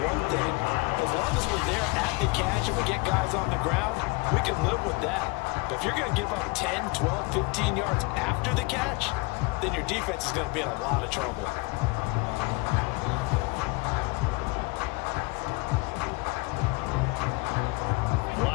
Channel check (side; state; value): right; quieter; 25.3 dB